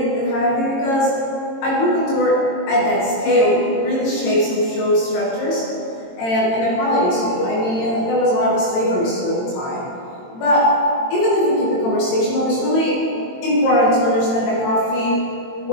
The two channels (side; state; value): right; late; 22 ms